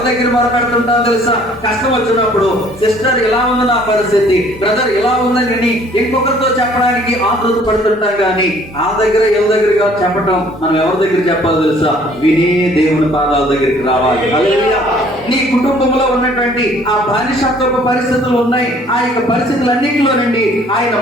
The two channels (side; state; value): both; normal; correlation 0.57